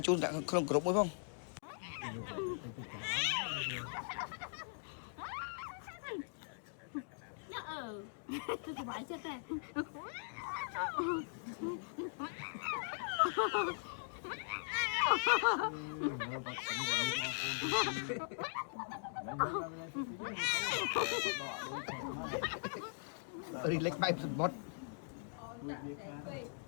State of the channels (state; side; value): silent; right; digital silence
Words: chun đã không group mới không tôi thì bãi chết này relax bay một